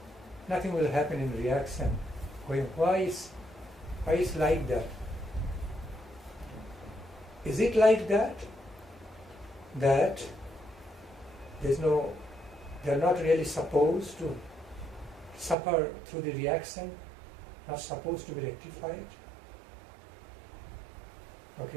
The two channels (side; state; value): left; drops out; at 15.6 s